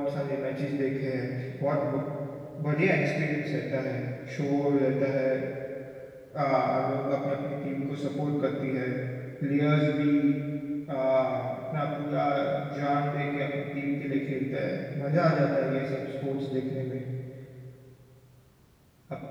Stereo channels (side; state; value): both; identical; correlation 1.00